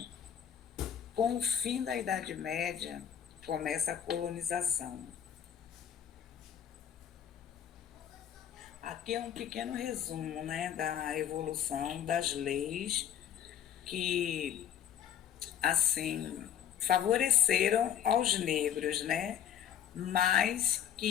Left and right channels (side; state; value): right; quieter; 9.7 dB